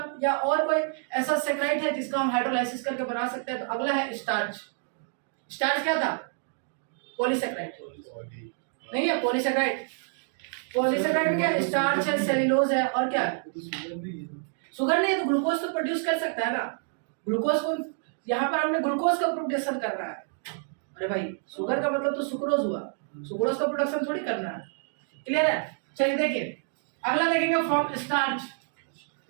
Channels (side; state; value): left; silent; 59 dB below the other